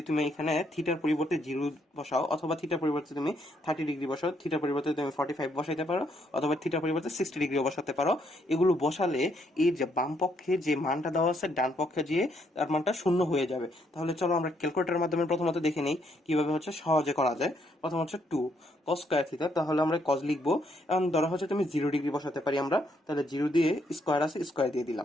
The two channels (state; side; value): normal; both; correlation 0.73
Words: তুমি এখানে থিটার পরিবর্তে 0 বসাও, অথবা থিটার পরিবর্তে তুমি 30 ডিগ্রি বসাও, থিটার পরিবর্তে তুমি 45 বসাইতে পারো, অথবা থিটার পরিবর্তে 60 ডিগ্রিও বসাতে পারো। এগুলো বসালে এই যে বাম পক্ষে যে মানটা দেওয়া আছে ডান পক্ষে গিয়ে তার মানটা শূন্য হয়ে যাবে। তাহলে চলো আমরা ক্যালকুলেটরের মাধ্যমে প্রথমত দেখে নেই কিভাবে হচ্ছে সহজে করা যায়। প্রথম হচ্ছে 2 cos² থিটা, তাহলে আমরা কজ লিখবো। এখন ধরা হচ্ছে তুমি 0 ডিগ্রি বসাতে পারি আমরা, তাহলে 0 দিয়ে স্কোয়ার আছে, স্কোয়ার দিয়ে